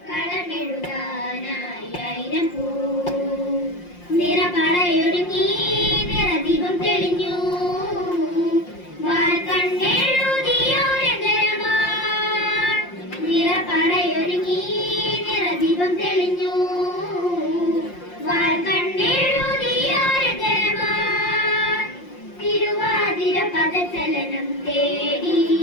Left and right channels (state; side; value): late; right; 5.7 ms